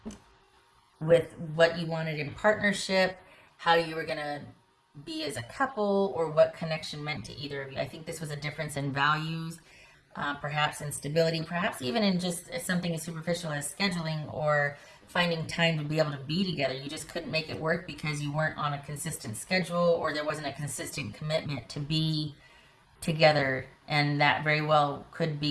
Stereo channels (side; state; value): both; identical; correlation 1.00